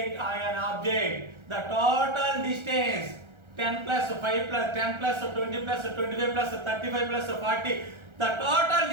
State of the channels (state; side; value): late; left; 1.3 ms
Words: or an object. The total distance 10 plus 5 plus 10 plus 20 plus 25 plus 35 plus 40. The total